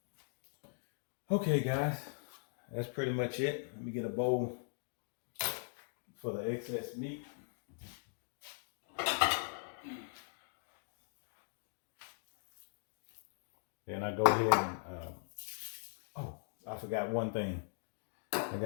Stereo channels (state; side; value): silent; right; digital silence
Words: Okay, guys, that's pretty much it. Let me get a bowl for the excess meat. Then I go ahead and, oh, I forgot one thing. I